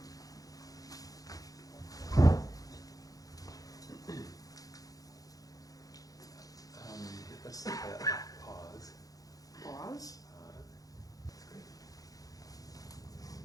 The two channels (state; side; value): late; right; 0.17 ms